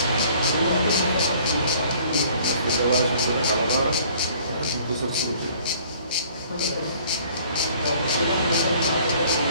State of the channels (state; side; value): inverted; both; correlation -0.55